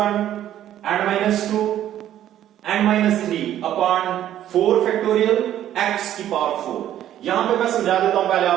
n minus 2 n minus 3 upon 4 factorial x की पावर 4। यहां पे मैं समझा देता हूं पहले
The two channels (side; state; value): left; quieter; 11.8 dB